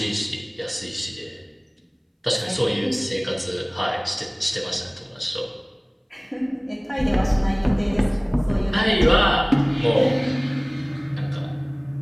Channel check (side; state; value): both; identical; correlation 1.00